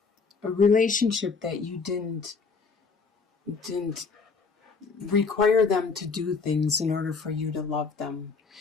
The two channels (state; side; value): quieter; right; 4.7 dB